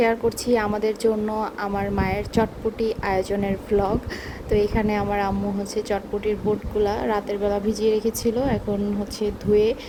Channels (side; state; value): both; identical; correlation 1.00